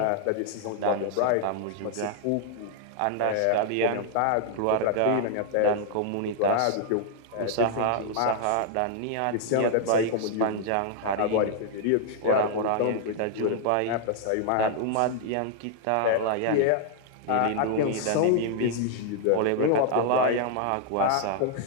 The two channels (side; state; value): both; different; correlation 0.00